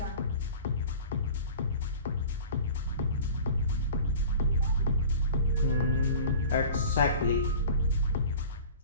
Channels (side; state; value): both; inverted; correlation -0.41